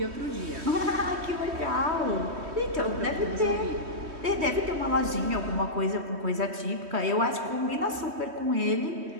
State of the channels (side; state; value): left; late; 3.2 ms